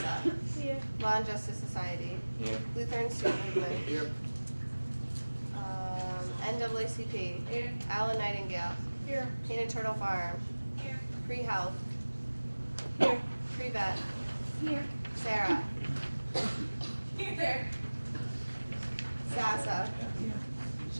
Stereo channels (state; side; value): inverted; both; correlation -1.00